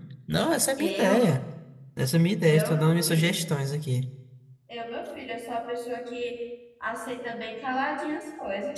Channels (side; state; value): both; identical; correlation 1.00